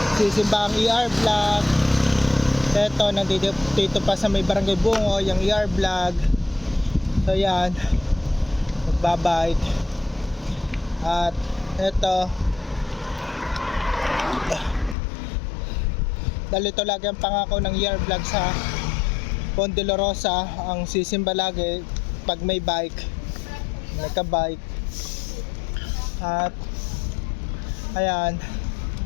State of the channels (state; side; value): drops out; right; at 15.0 s